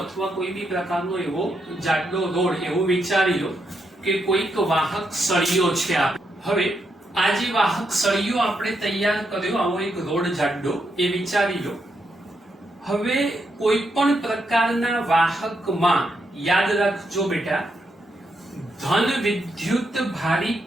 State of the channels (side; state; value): both; normal; correlation 0.81